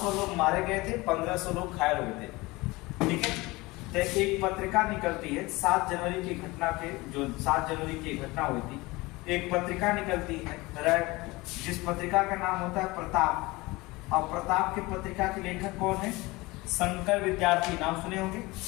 लोग मारे गए थे, 1500 लोग घायल हो गए थे। ठीक है, तो एक पत्रिका निकलती है 7 जनवरी की घटना के, जो 7 जनवरी की घटना हुई थी, एक पत्रिका निकलती है, जिस पत्रिका का नाम होता है प्रताप। और प्रताप की पत्रिका के लेखक कौन है? शंकर विद्यार्थी। नाम सुने होंगे।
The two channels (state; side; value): quieter; right; 22.1 dB